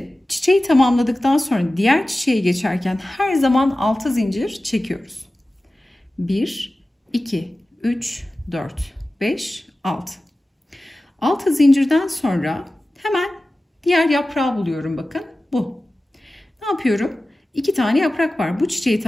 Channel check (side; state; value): both; normal; correlation 0.96